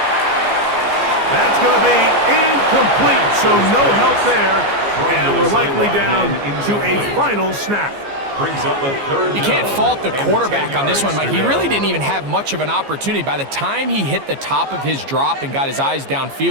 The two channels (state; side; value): late; left; 15 ms